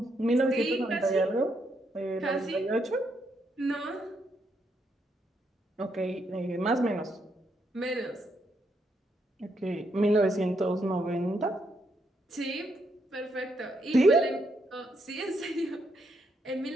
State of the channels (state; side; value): normal; both; correlation 0.77